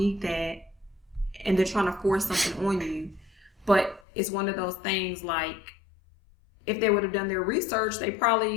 that. And they're trying to force something on you. But it's one of those things, like, if they would have done their research, they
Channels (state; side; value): drops out; right; at 4.0 s